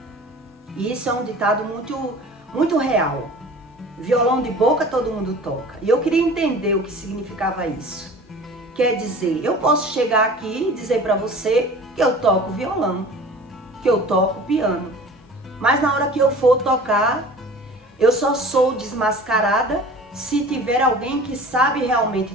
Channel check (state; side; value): normal; both; correlation 0.42